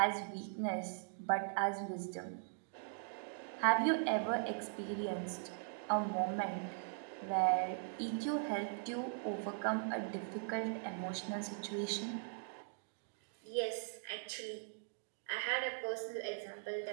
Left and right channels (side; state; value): left; silent; digital silence